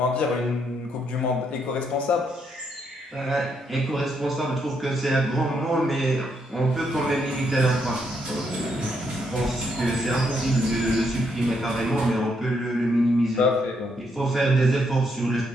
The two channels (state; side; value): normal; both; correlation 0.76